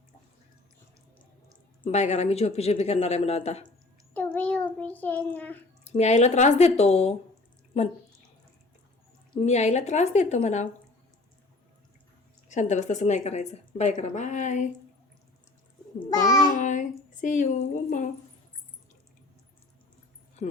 बाय करा मी झोपी करणार आहे म्हणा आता तुम्ही उभी ना मी आईला त्रास देतो म्हण मी आईला त्रास देतो म्हणा शांत बस तसं नाही करायचं बाय करा bye bye see you mamma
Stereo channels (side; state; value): right; quieter; 3.0 dB